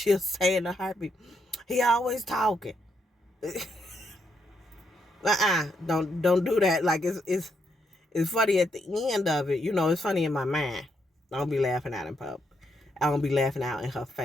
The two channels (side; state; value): both; normal; correlation 0.78